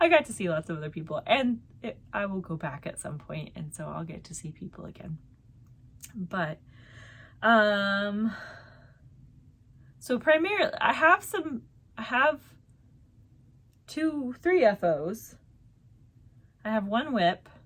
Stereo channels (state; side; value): identical; both; correlation 1.00